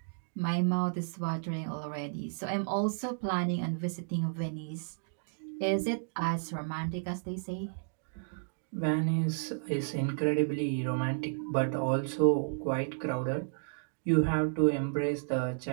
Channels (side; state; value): left; silent; digital silence